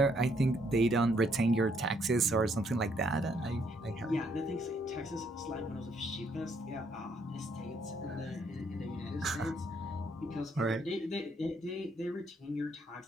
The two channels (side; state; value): both; normal; correlation 0.70